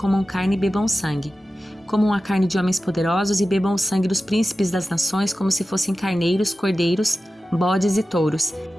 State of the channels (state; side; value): normal; both; correlation 0.94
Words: carne e bebam sangue. Comam a carne de homens poderosos e bebam o sangue dos príncipes das nações como se fossem carneiros, cordeiros, bodes e touros,